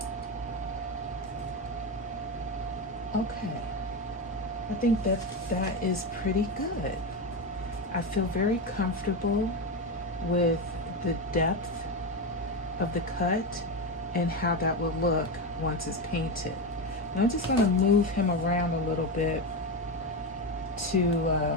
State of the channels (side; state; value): both; normal; correlation 0.15